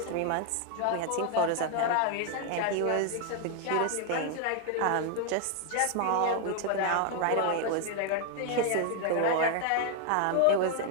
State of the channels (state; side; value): different; both; correlation 0.00